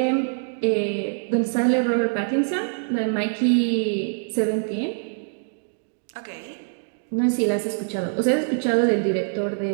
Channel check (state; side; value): silent; left; digital silence